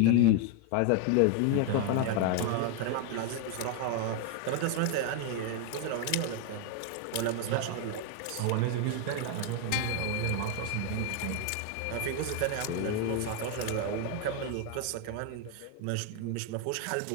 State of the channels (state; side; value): different; both; correlation 0.01